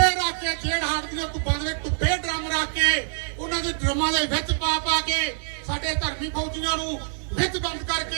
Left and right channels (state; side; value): silent; left; digital silence